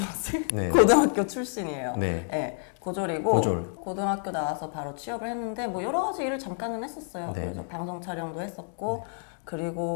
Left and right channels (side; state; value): right; silent; 59 dB below the other